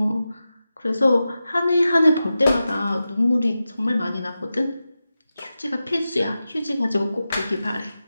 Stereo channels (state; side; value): inverted; both; correlation -0.92